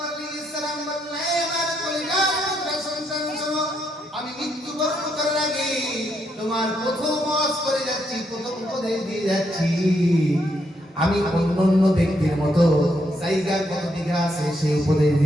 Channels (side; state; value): both; normal; correlation 0.77